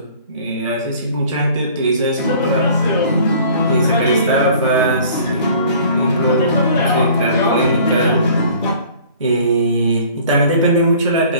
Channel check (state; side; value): inverted; both; correlation -0.50